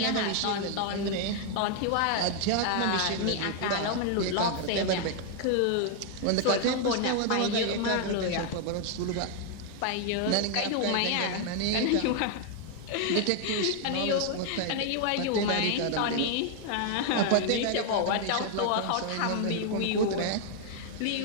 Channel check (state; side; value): different; both; correlation 0.00